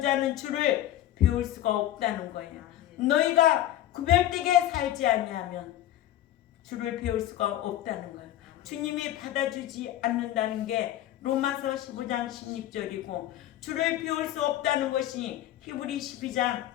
자는 주를 배울 수가 없다는 거예요. 너희가 구별되게 살지 아니하면 주를 배울 수가 없다는 거예요. 주님이 받아주지 않는다는 게 로마서 15장 16절이고 주를 배울 수 없다는 것이 히브리 12장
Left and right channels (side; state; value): right; quieter; 13.1 dB